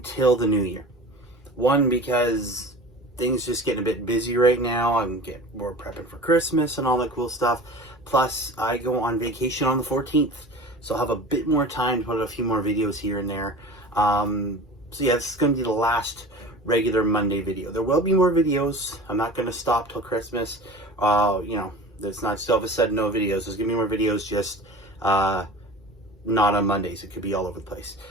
the new year. One, because things just getting a bit busy right now. We're prepping for Christmas and all that cool stuff. Plus, I go on vacation on the 14th, so I'll have a bit more time to put a few more videos here and there. So yeah, this is going to be the last regular Monday video. There will be more videos. I'm not going to stop till Christmas. There's not just all of a sudden no videos. There's going to be more videos, just not on Mondays. It could be all over the place.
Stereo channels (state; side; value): normal; both; correlation 0.37